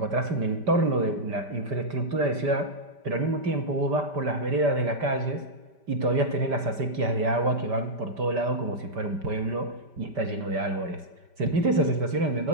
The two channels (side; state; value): left; late; 5.1 ms